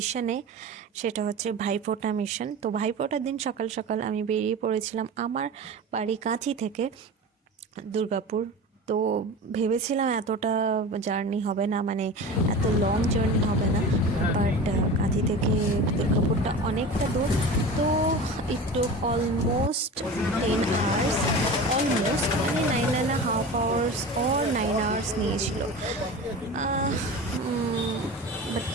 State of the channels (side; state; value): both; normal; correlation 0.32